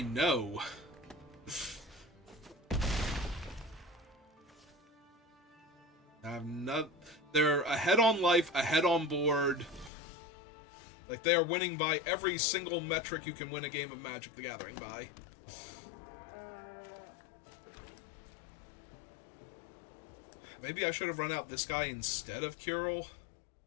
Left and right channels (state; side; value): drops out; right; at 9.9 s